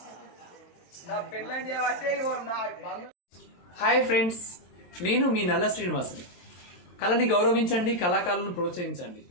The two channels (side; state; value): right; late; 23 ms